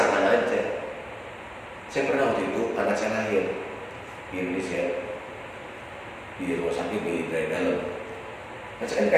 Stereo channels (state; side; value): identical; both; correlation 1.00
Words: aja. Saya pernah waktu itu anak saya lahir di Indonesia di rumah sakit di dalam. Nah, saya kan